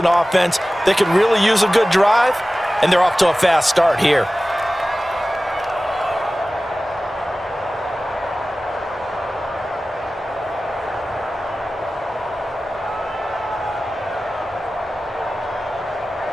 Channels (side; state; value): both; normal; correlation 0.96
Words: offense that could really use a good drive, and they're off to a fast start here.